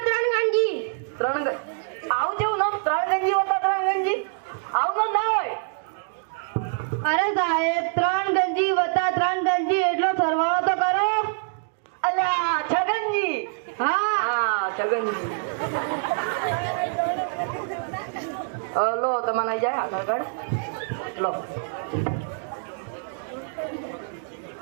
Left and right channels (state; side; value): silent; left; digital silence